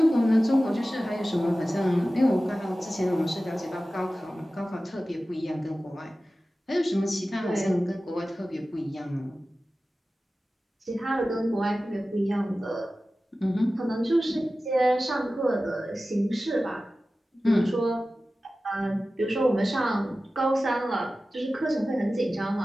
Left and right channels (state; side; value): normal; both; correlation 0.95